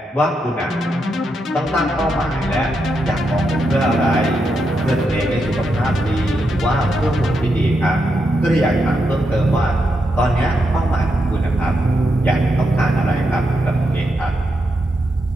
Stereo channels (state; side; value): normal; both; correlation 0.83